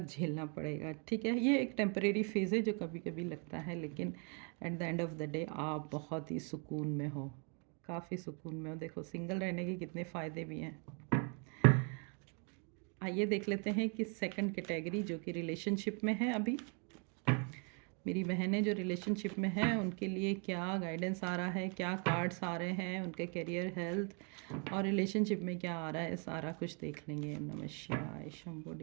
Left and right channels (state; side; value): quieter; left; 37.4 dB